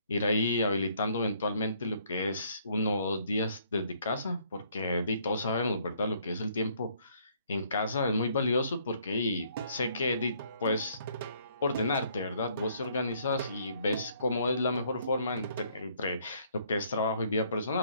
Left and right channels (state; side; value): inverted; both; correlation -0.65